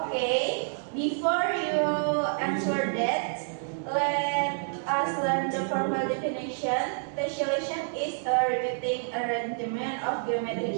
before you answer that, let us learn the formal definition. Tessellation is a repeating arrangement of geometric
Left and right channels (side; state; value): left; silent; digital silence